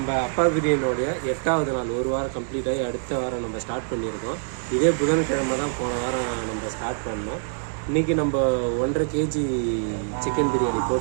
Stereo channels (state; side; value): silent; left; 59 dB below the other